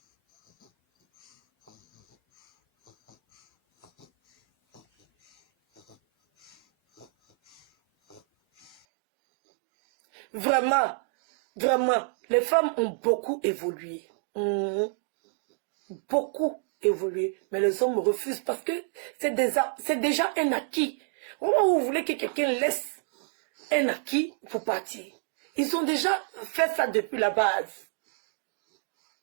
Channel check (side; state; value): left; drops out; at 8.8 s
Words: Vraiment, vraiment, les femmes ont beaucoup évolué. Beaucoup évolué. Mais les hommes refusent parce que c'est déjà un acquis. Au moment où vous voulez que quelqu'un laisse un acquis pour partir, ils ont déjà fait ça depuis la base.